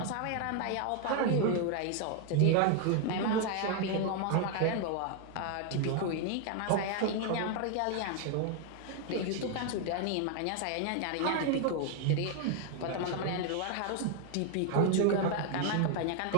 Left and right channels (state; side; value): different; both; correlation 0.00